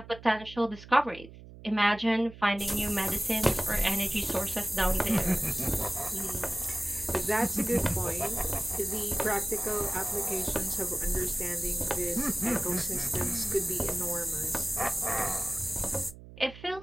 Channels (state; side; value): noise; right; hum, 17 dB below the sound